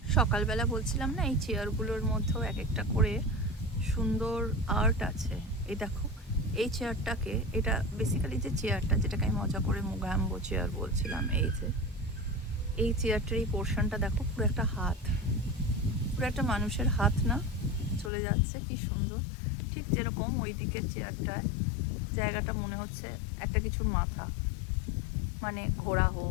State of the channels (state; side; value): drops out; right; at 18.1 s